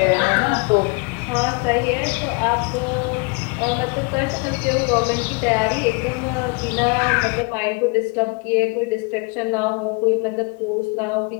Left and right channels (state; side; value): quieter; right; 30.7 dB